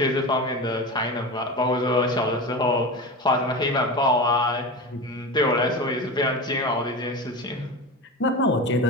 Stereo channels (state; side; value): normal; both; correlation 0.26